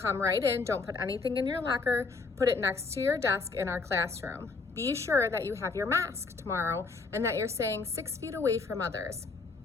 right in, don't put anything in your locker, put it next to your desk in our classroom. Be sure that you have your mask tomorrow and that you're staying 6 feet away from others.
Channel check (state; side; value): quieter; right; 4.2 dB